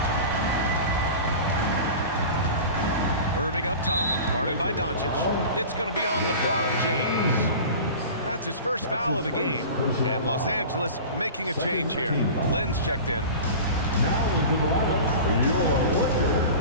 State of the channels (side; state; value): both; inverted; correlation -0.35